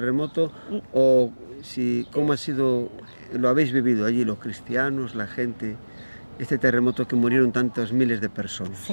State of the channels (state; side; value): inverted; both; correlation -1.00